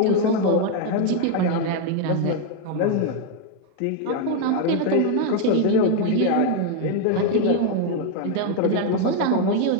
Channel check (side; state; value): both; different; correlation 0.00